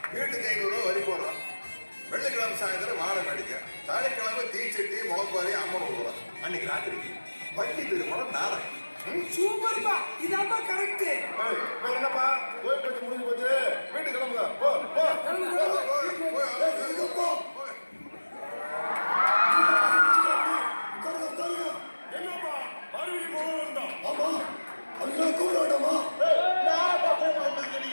வீட்டுக்கு 500 ரூபா வரி போடுறோம். வெள்ளிக்கிழமை சாயந்தரம் வாழை மேடிக்க, சனிக்கிழமை தீச்சட்டி முளப்பாரி அம்மன் விடுறோம். அன்னைக்கு ராத்திரிக்கு பள்ளி திருமணம் நாடகம். சூப்பர்ப்பா, இதாப்பா கரெக்ட். என்னப்பா கோயில் பத்தி முடிஞ்சு போச்சு, வீட்டுக்கு கிளம்புங்க. போ போ போ. என்னப்பா மறுபடியும் போக வேண்டாம். ஆமா அதுக்காக கூப்பிட வேண்டாமா?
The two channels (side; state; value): both; inverted; correlation -1.00